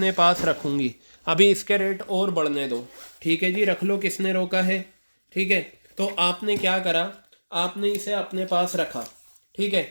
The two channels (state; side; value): inverted; both; correlation -1.00